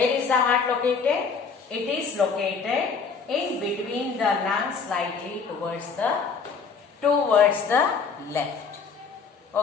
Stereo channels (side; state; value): right; quieter; 5.5 dB